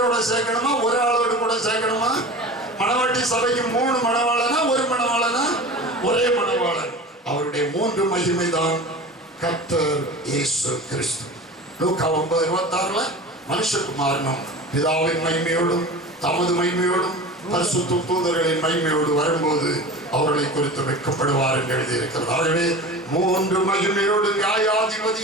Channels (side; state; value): both; normal; correlation 0.34